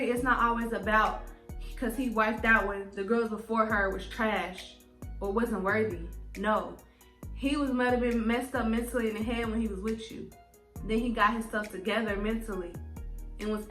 It's not always about because he wiped out when the girls before her was trash or wasn't worthy. No. He might have been messed up mentally in the head when he was with you. Then he got his stuff together mentally and was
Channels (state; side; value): identical; both; correlation 1.00